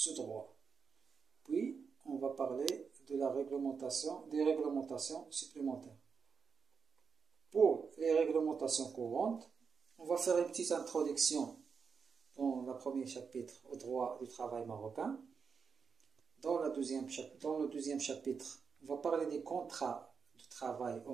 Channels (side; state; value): left; quieter; 5.8 dB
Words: droit. Puis, on va parler de des réglementations supplémentaires. Pour les réglementations courantes, on va faire une petite introduction dans le premier chapitre au droit du travail marocain. Dans le deuxième chapitre, on va parler des contrats de travail au